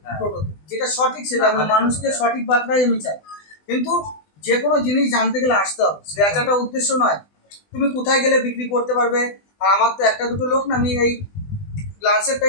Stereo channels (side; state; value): right; late; 20 ms